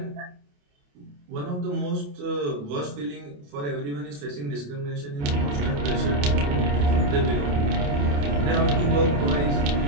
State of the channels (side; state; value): left; late; 28 ms